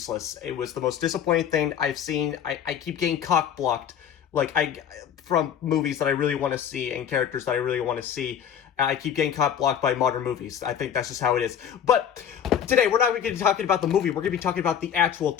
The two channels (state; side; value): quieter; right; 8.8 dB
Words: It was the most disappointing thing I've seen. I keep getting cock-blocked, from movies that I really want to see and characters that I really want to see. I keep getting cock-blocked by modern movies. I think that's just how it is. But today, we're not going to be talking about the movie. We're going to be talking about the actual